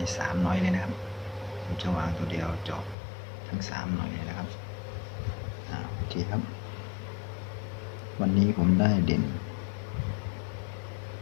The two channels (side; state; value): right; drops out; at 3.0 s